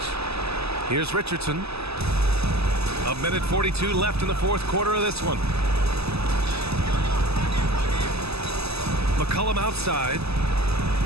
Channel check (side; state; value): left; late; 0.79 ms